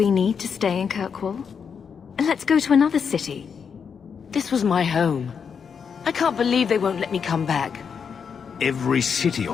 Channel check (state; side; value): quieter; right; 6.6 dB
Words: need to stay in Kirkwall? Let's go to another city. This was my home. I can't believe they won't let me come back. Every city